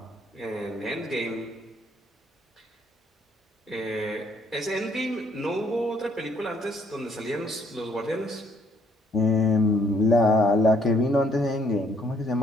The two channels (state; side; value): normal; both; correlation 0.66